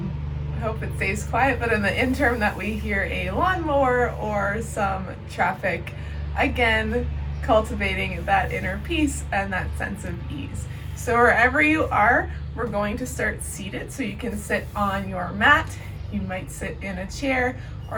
hope it stays quiet, but in the interim that we hear a lawnmower or some traffic, again, cultivating that inner peace and that sense of ease. So wherever you are, we're going to start seated, so you can sit on your mat. You might sit in a chair,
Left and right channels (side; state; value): both; identical; correlation 1.00